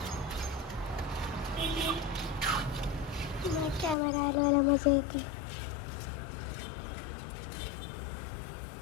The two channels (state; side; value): drops out; right; at 4.0 s